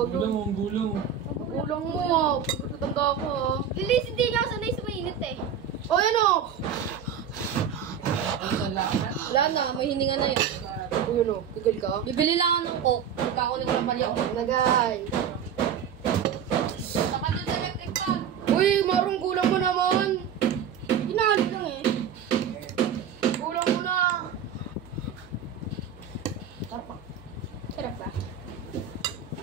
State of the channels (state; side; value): quieter; left; 8.0 dB